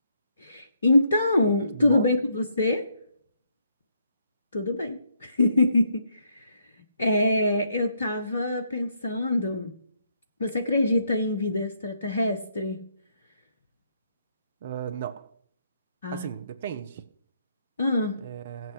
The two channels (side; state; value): both; inverted; correlation -0.74